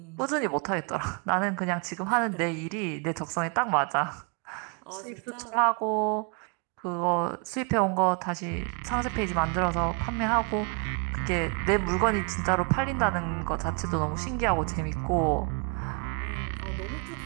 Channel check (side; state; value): left; quieter; 36.1 dB